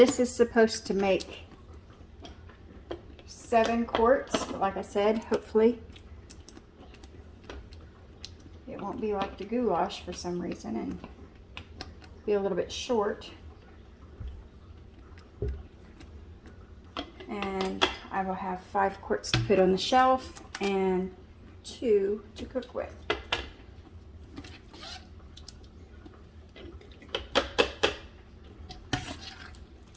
is supposed to make 7 quarts, but like I said, hopefully it won't be like the goulash for some reason and be a little bit short. And I will have 5 quarts to put on the shelf and 2 to cook with.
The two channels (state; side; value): identical; both; correlation 1.00